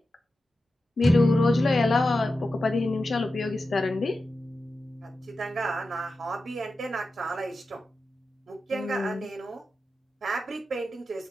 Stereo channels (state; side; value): normal; both; correlation 0.91